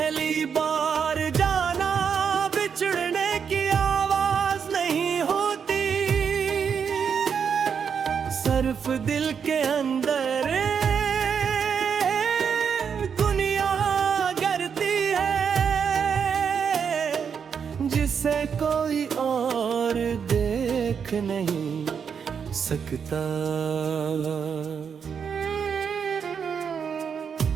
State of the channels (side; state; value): left; quieter; 6.9 dB